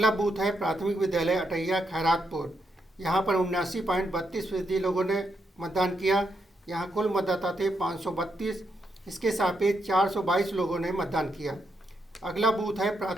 बूथ है प्राथमिक विद्यालय अटैया खैरातपुर। यहाँ पर 79.32% लोगों ने मतदान किया। यहाँ कुल मतदाता थे 532। इसके सापेक्ष 422 लोगों ने मतदान किया। अगला बूथ है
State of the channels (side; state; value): both; normal; correlation 0.81